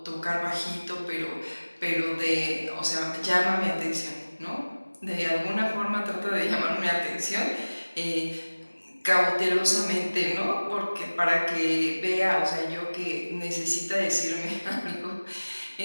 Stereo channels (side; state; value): both; inverted; correlation -1.00